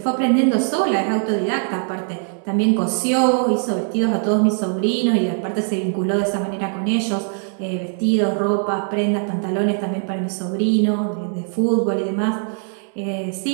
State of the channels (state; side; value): silent; left; 56 dB below the other